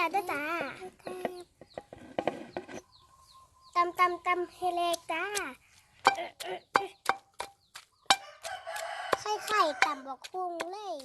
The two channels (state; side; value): identical; both; correlation 1.00